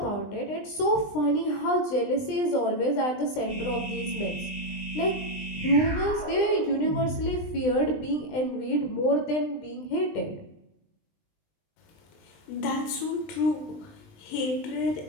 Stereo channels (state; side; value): late; right; 20 ms